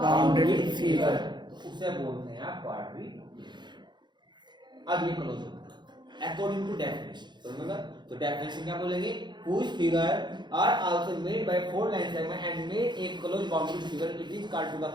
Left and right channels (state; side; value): late; left; 0.21 ms